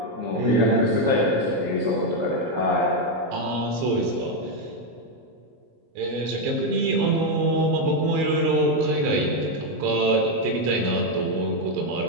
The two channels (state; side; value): late; left; 22 ms